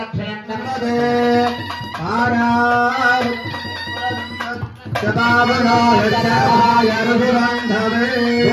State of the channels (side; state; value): both; identical; correlation 1.00